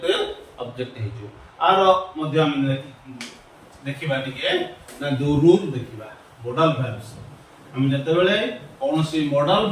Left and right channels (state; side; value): identical; both; correlation 1.00